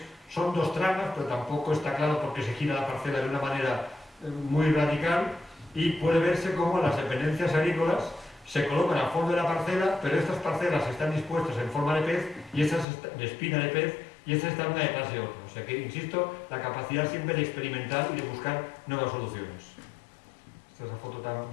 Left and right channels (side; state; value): right; drops out; at 12.9 s